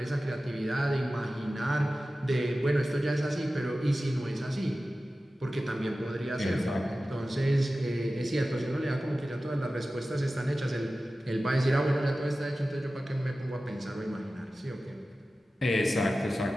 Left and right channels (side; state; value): both; normal; correlation 0.95